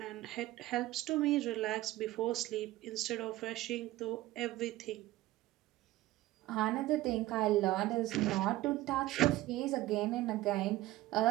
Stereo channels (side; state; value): left; quieter; 16.7 dB